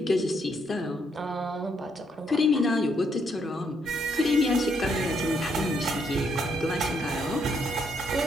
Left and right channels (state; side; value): normal; both; correlation 0.74